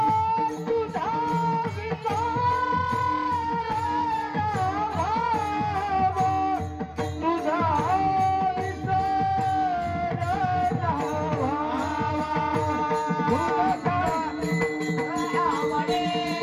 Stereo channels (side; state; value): both; identical; correlation 1.00